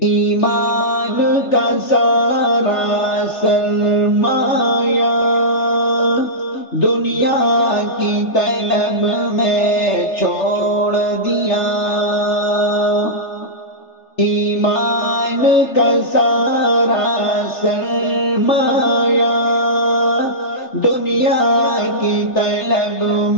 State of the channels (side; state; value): right; late; 3.4 ms